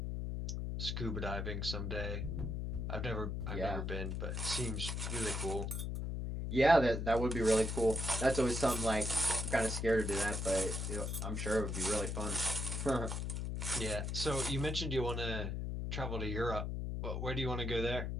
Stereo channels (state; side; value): noise; left; hum, 2 dB below the sound